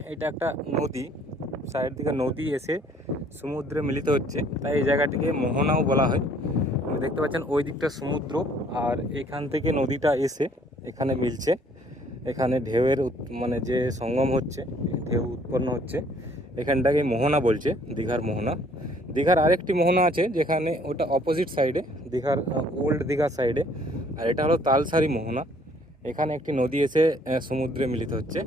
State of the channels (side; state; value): both; normal; correlation 0.61